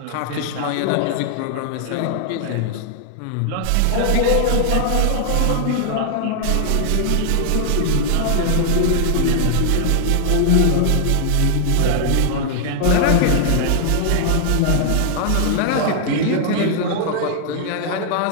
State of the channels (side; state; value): both; different; correlation 0.00